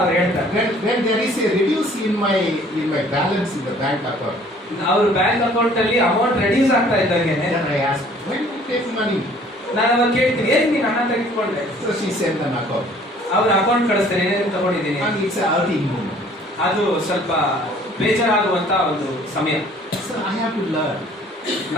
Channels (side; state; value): both; normal; correlation 0.55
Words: ಹೇಳ್ತಾರೆ. When there is a reduce in my balance in the bank account, ಅವ್ರ ಬ್ಯಾಂಕ್ ಅಕೌಂಟ್ ಅಲ್ಲಿ ಅಮೌಂಟ್ ರೆಡ್ಯೂಸ್ ಆಗ್ತಾ ಇದ್ದಂಗೆ then I ask, when you take money? ನಾನು ಅವಾಗ ಕೇಳ್ತೀನಿ, ಏನ್ ನೀನು ಹಣ ತೆಗೆದುಕೊಂಡೆ? So she sent an account. ಅವ್ರ ಅಕೌಂಟ್ ಕಳಿಸ್ತಾರೆ, ಏನೇನು ತಗೊಂಡಿದ್ದೀನಿ. And it's a outing moment. ಅದು ಸ್ವಲ್ಪ ಬೇಜಾರಾಗುವಂತ ಒಂದು ಸಮಯ. So I have to learn.